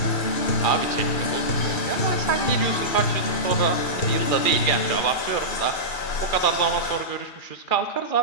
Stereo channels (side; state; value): right; late; 2.4 ms